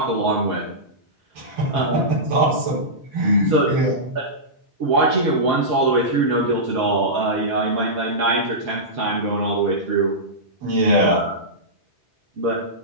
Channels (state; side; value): late; left; 5.3 ms